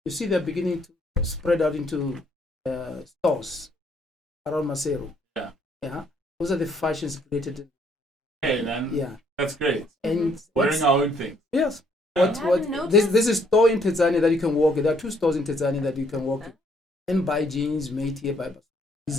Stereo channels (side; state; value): both; normal; correlation 0.67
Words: you see they're beginning to spread out into stores around Majoro. Yeah. Yeah. Those are the fashions created. Hey, man. Yeah. That's great. And Wearing our own thing. yes. Yeah. This is store in Tanzania that you can walk in. There are 2 stores in Tanzania that you can walk in and buy jeans made here by